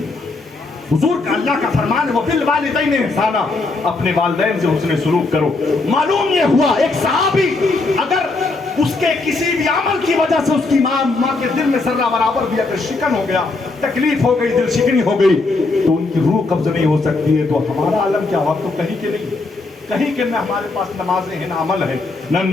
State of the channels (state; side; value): quieter; right; 3.5 dB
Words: حضور کا اللہ کا فرمان ہے وہ بالوالدین احسانا, اپنے والدین سے حسن سلوک کرو. معلوم یہ ہوا ایک صحابی اگر اس کے کسی بھی عمل کی وجہ سے اس کی ماں کے دل میں ذرہ برابر بھی اگر شکن ہو گیا, تکلیف ہو گئی, دل شکنی ہو گئی تو ان کی روح قبض نہیں ہو سکتی ہے. تو ہمارا عالم کیا ہوا, تو کہیں کے نہیں, کہیں کہ نہ ہمارے پاس نمازیں ہیں, نہ عمل ہے, نہ